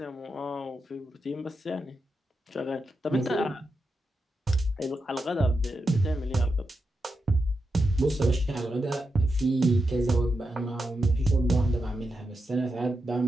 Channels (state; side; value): normal; both; correlation 0.87